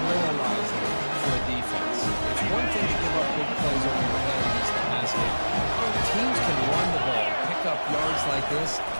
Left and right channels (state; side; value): inverted; both; correlation -1.00